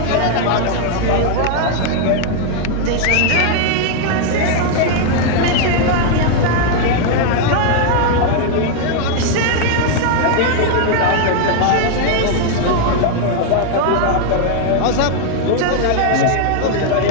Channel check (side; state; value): both; different; correlation 0.00